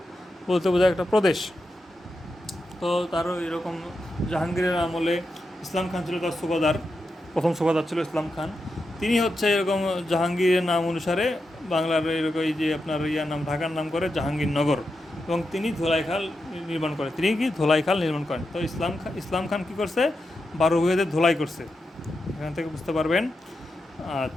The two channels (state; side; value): normal; both; correlation 0.87